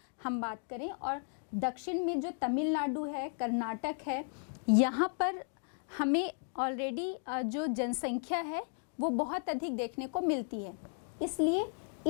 हम बात करें और दक्षिण में जो तमिलनाडु है, कर्नाटक है, यहाँ पर हमें ऑलरेडी जो जनसंख्या है वो बहुत अधिक देखने को मिलती है। इसलिए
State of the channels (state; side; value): silent; right; 55 dB below the other